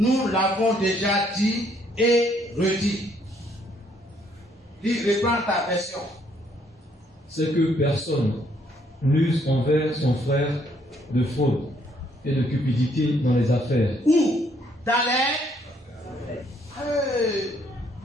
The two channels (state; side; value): normal; both; correlation 0.68